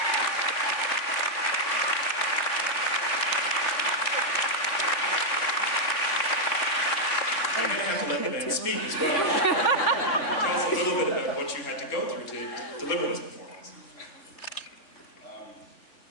Speak as well. Tell us a little bit about what you had to go through to deliver this performance.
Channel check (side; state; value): right; late; 3.6 ms